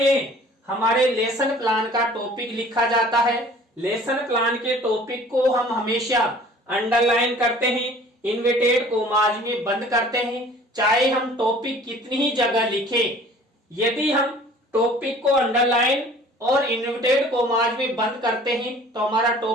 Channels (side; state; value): both; normal; correlation 0.50